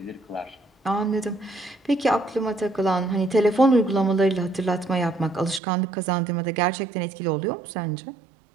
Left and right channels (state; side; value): drops out; left; at 5.6 s